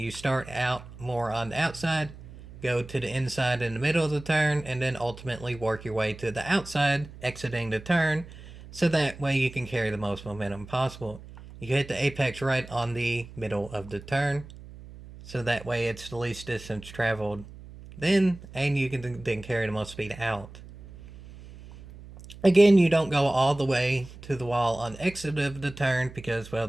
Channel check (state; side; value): noise; right; hum, 17 dB below the sound